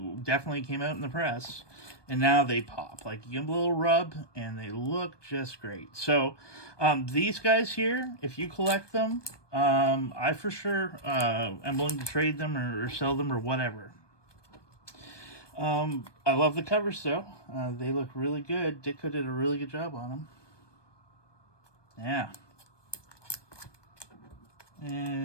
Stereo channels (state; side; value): late; right; 1.2 ms